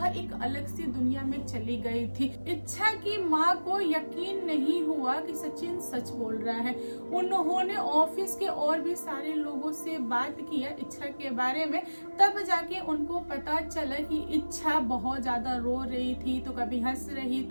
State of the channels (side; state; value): both; inverted; correlation -1.00